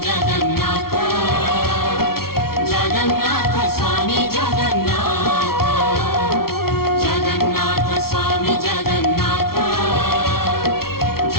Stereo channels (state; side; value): late; right; 0.94 ms